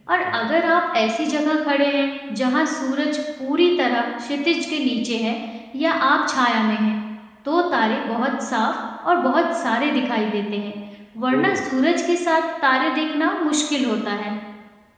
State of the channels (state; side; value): identical; both; correlation 1.00